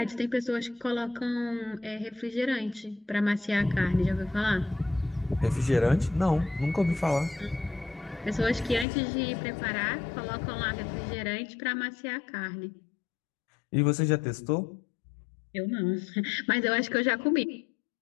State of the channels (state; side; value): drops out; right; at 8.8 s